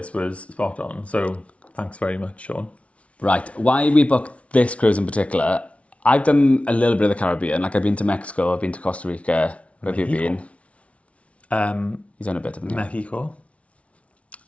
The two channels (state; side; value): late; right; 0.063 ms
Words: was spot on. So thanks very much, Sean. Right. Why we booked this cruise in particular? I've done a little bit of the Caribbean. Like I've been to Mexico. I've been to Costa Rica. Where have you been? You've done a bit, haven't you? Mexico.